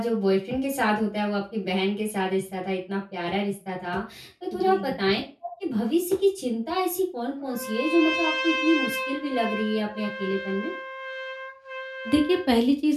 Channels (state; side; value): identical; both; correlation 1.00